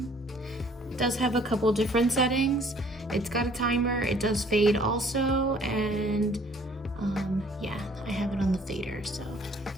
It does have a couple different settings. It's got a timer, it does fade also, and yeah, I have it on the fader, so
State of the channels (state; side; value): normal; both; correlation 0.57